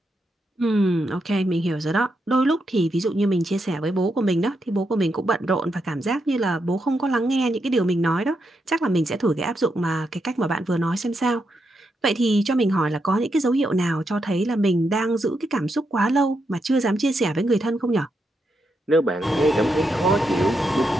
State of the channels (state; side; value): normal; both; correlation 0.82